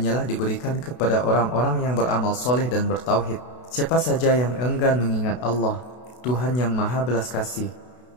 diberikan kepada orang-orang yang beramal soleh dan bertauhid. Siapa saja yang enggan mengingat Allah, Tuhan yang Maha Belas Kasih,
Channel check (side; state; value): right; late; 32 ms